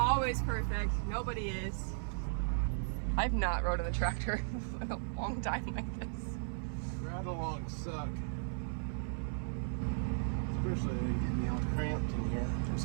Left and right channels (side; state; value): left; silent; 54 dB below the other